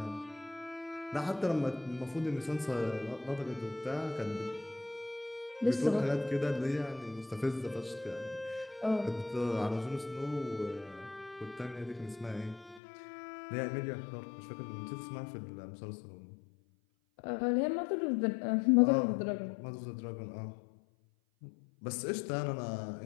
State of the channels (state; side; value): drops out; right; at 12.8 s